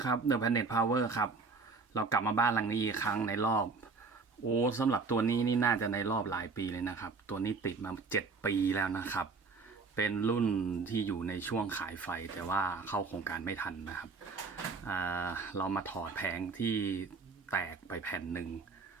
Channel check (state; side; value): quieter; left; 4.5 dB